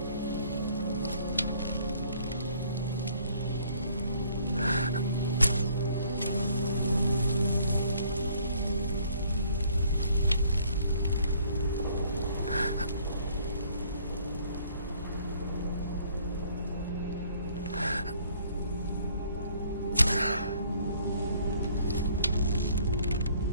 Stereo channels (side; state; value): both; inverted; correlation -0.61